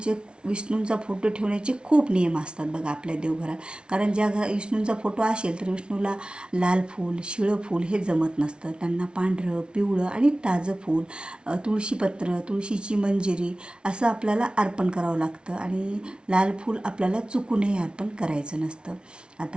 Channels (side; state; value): left; late; 0.056 ms